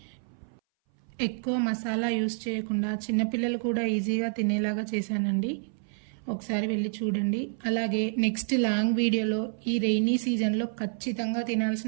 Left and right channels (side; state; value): left; silent; 59 dB below the other